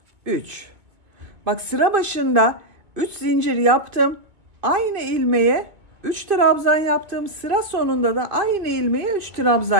3. Bak, sıra başında 3 zincir yaptım. Aynı ilmeğe 3 trabzan yaptım. Sıra sonunda da aynı ilmeğe 3 trabzan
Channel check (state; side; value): late; left; 2.5 ms